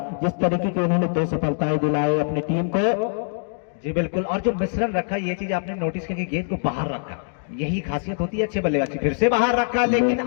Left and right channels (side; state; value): right; silent; digital silence